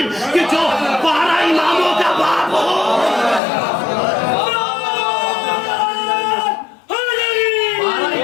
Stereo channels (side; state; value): right; drops out; at 3.4 s